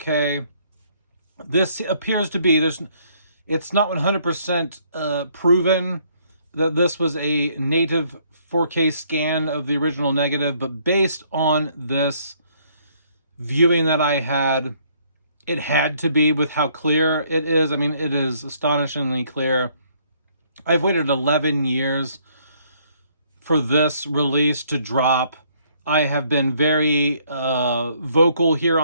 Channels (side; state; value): both; inverted; correlation -0.65